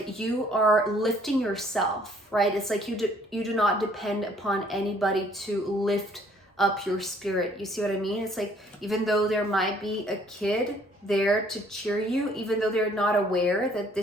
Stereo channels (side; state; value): both; normal; correlation 0.61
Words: you are lifting yourself, right? It's like you do not depend upon anybody to lift up your spirit. You see what I mean? It's like, even though there might be a kid there to cheer you, even though they're not aware that